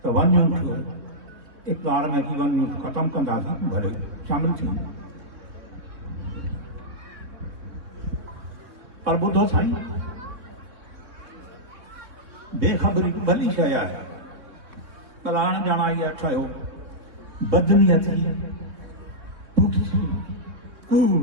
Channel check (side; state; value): left; late; 3.6 ms